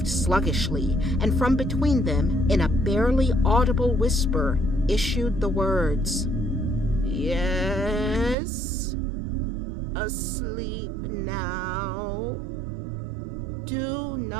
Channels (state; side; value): drops out; left; at 8.3 s